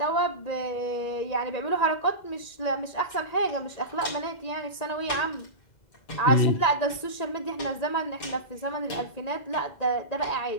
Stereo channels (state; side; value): late; right; 2.0 ms